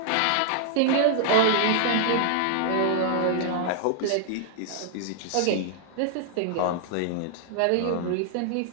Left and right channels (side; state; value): both; different; correlation -0.01